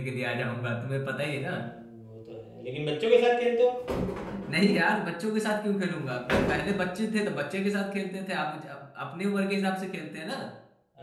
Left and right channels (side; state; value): both; identical; correlation 1.00